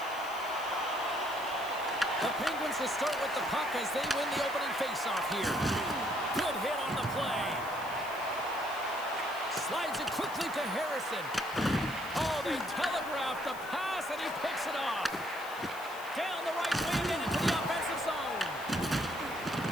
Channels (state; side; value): noise; left; hiss, 17 dB below the sound